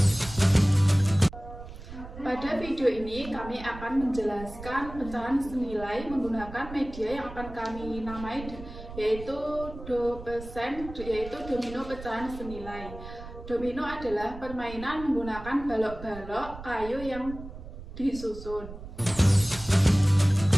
Pada video ini kami akan menjelaskan pecahan senilai menggunakan media yang akan kami namai yaitu domino pecahan senilai. Domino adalah permainan menggunakan balok-balok kayu yang disusun.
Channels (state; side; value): noise; right; rumble, 13 dB below the sound